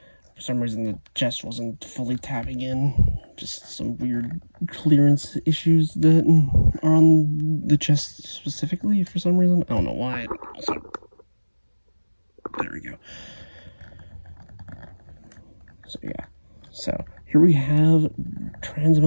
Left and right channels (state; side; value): inverted; both; correlation -1.00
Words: for some reason the chest wasn't fully tapping in. Just some weird clearance issues that are on the chest specifically for some reason. I don't know why. Also, there we go. So yeah, so here we have